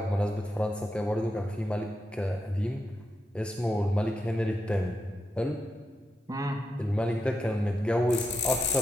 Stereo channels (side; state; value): both; normal; correlation 0.85